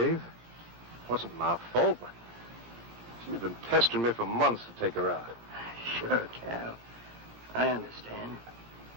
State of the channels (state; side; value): late; left; 17 ms